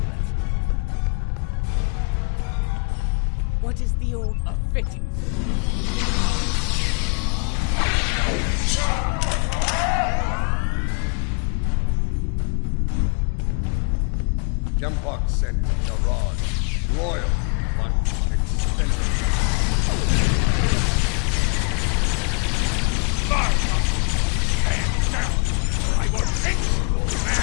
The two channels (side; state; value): right; quieter; 35.4 dB